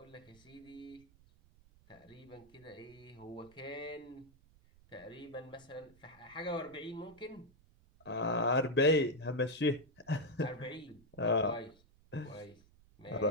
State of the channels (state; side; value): noise; right; rumble, 27 dB below the sound